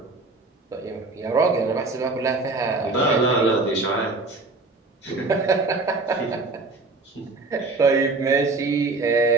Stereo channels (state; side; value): quieter; left; 3.4 dB